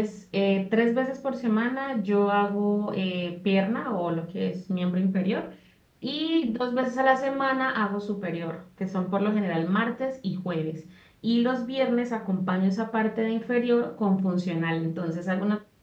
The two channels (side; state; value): both; identical; correlation 1.00